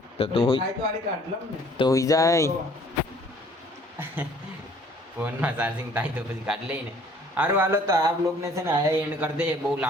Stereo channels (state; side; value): normal; both; correlation 0.56